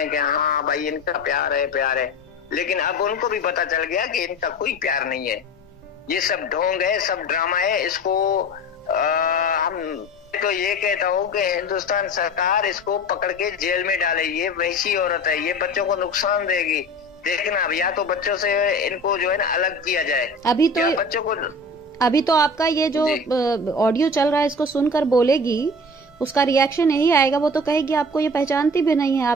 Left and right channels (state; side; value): normal; both; correlation 0.36